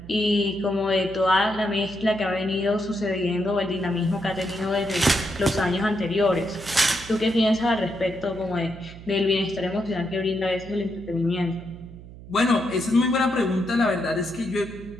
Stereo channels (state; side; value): noise; right; hum, 16 dB below the sound